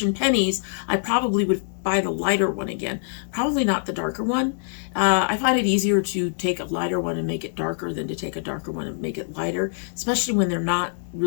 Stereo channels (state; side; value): silent; right; digital silence